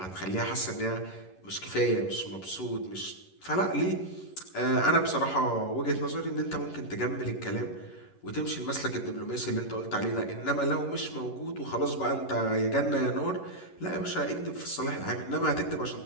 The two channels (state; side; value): late; right; 11 ms